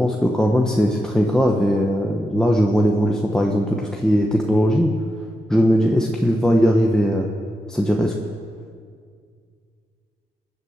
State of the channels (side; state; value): both; normal; correlation 0.88